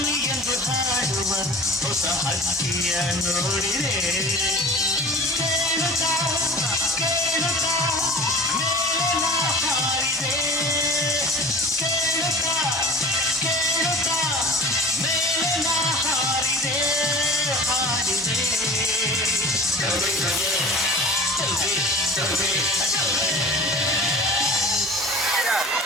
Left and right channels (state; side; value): normal; both; correlation 0.41